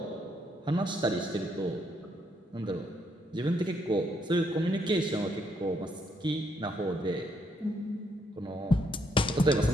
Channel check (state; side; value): normal; both; correlation 0.74